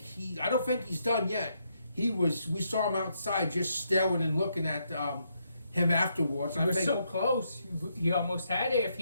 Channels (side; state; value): both; inverted; correlation -0.77